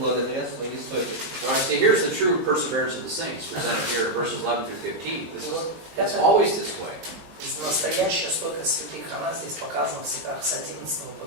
своей стойкости. Now I see here's the true perseverance of the saints, presented here in verses 11 through 15. И вот It's это always this way. настоящая стойкость святых, она здесь показана в стихах с 11 по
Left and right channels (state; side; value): late; left; 20 ms